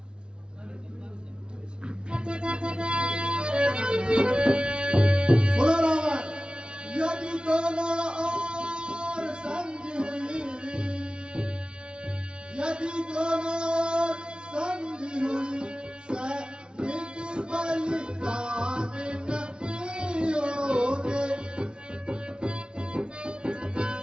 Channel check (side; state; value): left; late; 0.055 ms